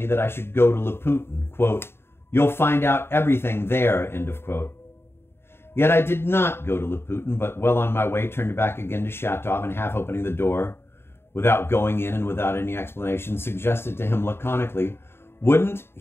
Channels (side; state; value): right; late; 0.11 ms